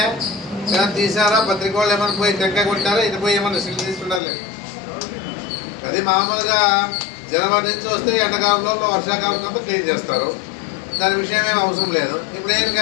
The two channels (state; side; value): drops out; right; at 4.2 s